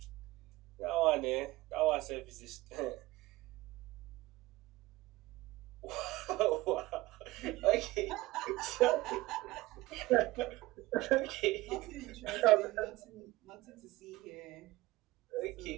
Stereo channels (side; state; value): left; quieter; 19.0 dB